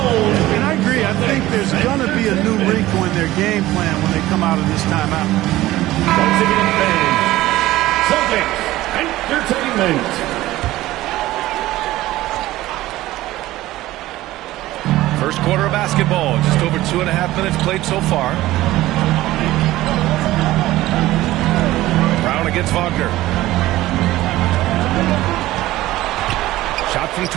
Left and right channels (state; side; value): quieter; left; 16.4 dB